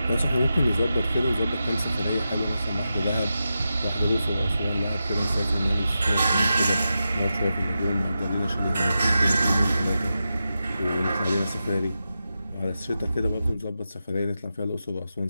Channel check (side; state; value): both; inverted; correlation -0.90